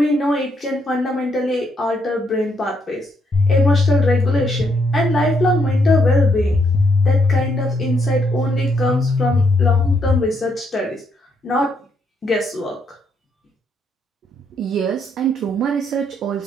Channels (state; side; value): normal; both; correlation 0.75